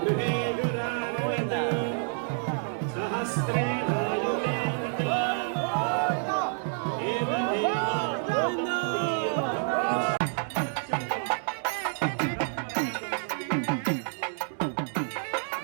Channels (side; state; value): left; silent; 59 dB below the other